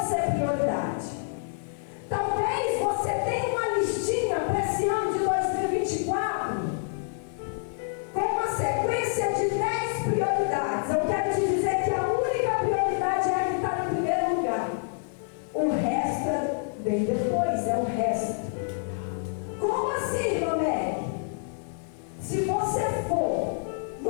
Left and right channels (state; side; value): silent; right; digital silence